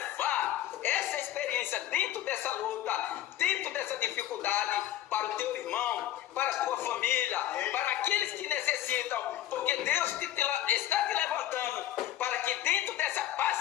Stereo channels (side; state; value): right; quieter; 12.9 dB